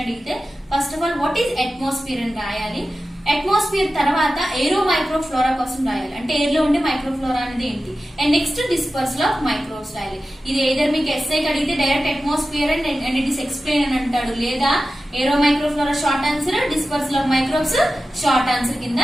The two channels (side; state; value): both; normal; correlation 0.94